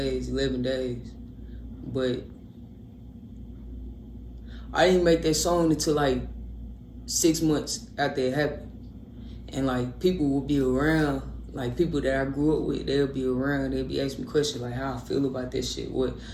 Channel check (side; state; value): both; identical; correlation 1.00